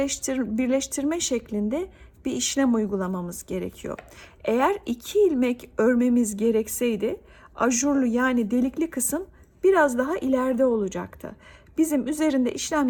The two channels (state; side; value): identical; both; correlation 1.00